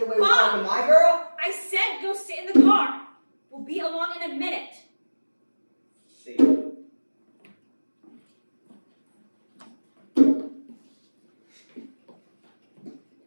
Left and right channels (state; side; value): inverted; both; correlation -1.00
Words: away with Mom! talking to my girl? I said go sit in the car. We'll be along in a minute. See.